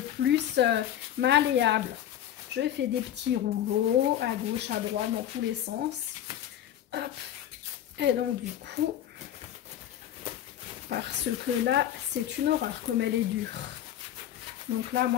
malléable. Je fais des petits rouleaux à gauche, à droite, dans tous les sens. Hop. Et donc du coup, parce que là, c'est une horreur comme elle est dure. Donc là,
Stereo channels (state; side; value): quieter; right; 11.3 dB